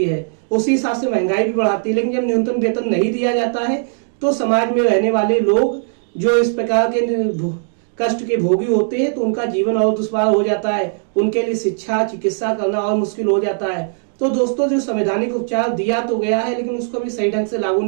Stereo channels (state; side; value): silent; left; digital silence